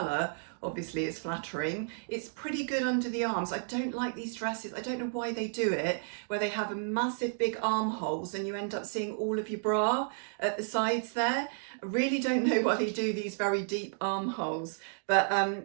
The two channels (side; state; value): left; silent; digital silence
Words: obviously, is flattering. It's pretty good under the arms. I don't like these dresses. I don't know why they do it, where they have a massive big armholes and you end up seeing all of your bra at the sides there. I really don't know why they do these very deep armholes, but